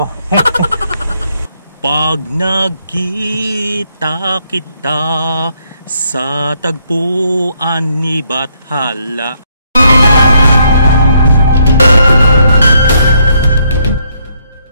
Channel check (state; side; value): inverted; both; correlation -0.72